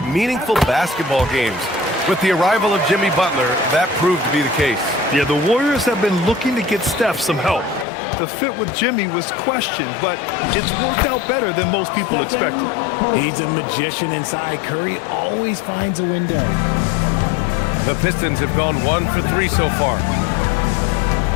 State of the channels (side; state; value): right; drops out; at 7.9 s